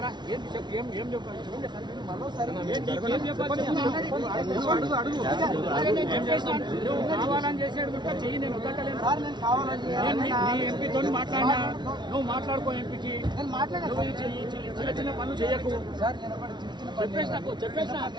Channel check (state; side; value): late; left; 0.21 ms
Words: కావాలని చేసాడు చెయ్యి. నేను వద్దలేను. ఎంపీతో మాట్లాడినా నువ్వు మాట్లాడుకో. ఎంపీకి చిన్న చిన్న పనులు చేయకు.